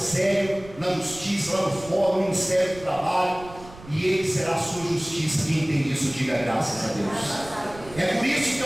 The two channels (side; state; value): right; noise; rumble, 18 dB below the sound